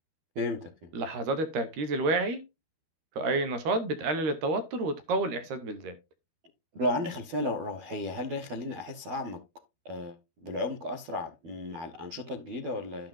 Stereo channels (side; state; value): left; late; 12 ms